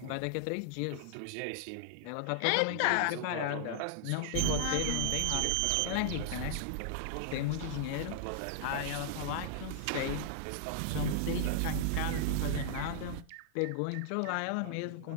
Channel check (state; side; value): different; both; correlation -0.01